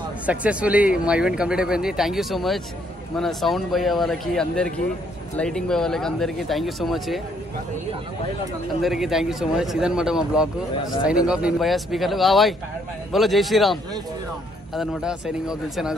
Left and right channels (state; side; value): normal; both; correlation 0.69